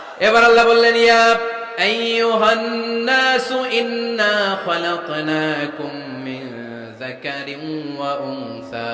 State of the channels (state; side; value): identical; both; correlation 1.00